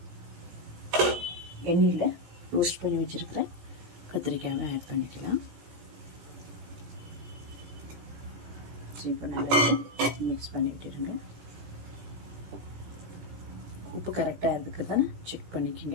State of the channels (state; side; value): late; left; 17 ms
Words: எண்ணெயில் ரோஸ்ட் பண்ணி வச்சுருக்கிறேன் கத்திரிக்காயை ஆட் பண்ணிக்கலாம். இப்போ நல்லா மிக்ஸ் பண்ணிட்டுருங்க. உப்பு கரெக்டாக இருக்குது தானே செக்